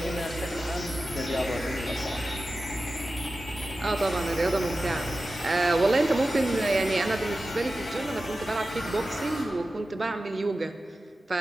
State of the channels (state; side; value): normal; both; correlation 0.94